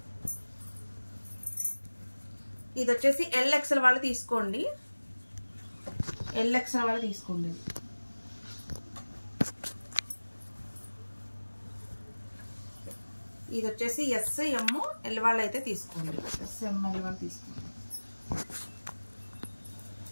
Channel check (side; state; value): both; inverted; correlation -1.00